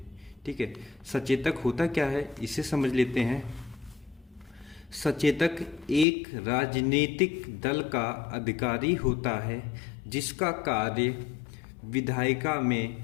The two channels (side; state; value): right; drops out; at 6.1 s